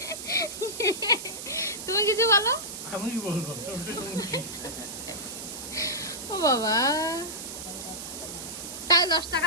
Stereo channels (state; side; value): noise; right; hiss, 8 dB below the sound